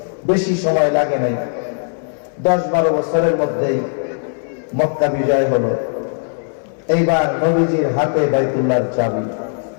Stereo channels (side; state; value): right; silent; digital silence